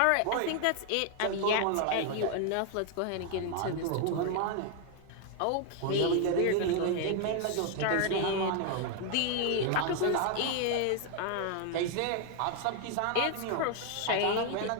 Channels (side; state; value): both; different; correlation 0.00